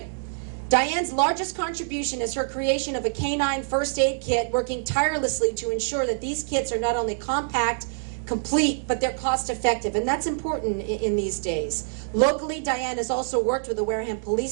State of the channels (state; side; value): silent; left; digital silence